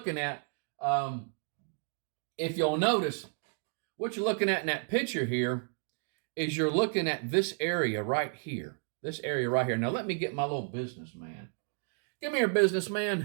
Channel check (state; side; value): silent; left; 56 dB below the other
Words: at, if you'll notice, what you're looking at in that picture here is you're looking at this area right here. This area right here. Now let me get my little businessman. Come here,